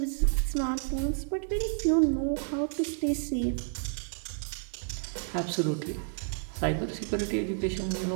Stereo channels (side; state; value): left; silent; digital silence